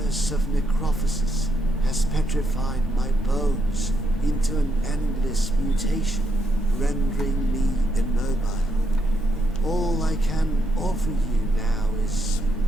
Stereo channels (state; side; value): normal; both; correlation 0.78